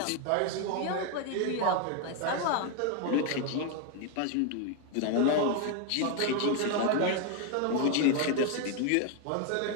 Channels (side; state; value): both; different; correlation 0.01